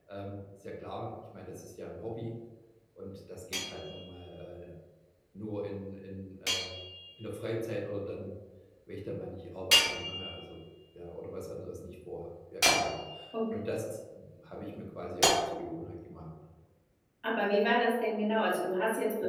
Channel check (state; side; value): identical; both; correlation 1.00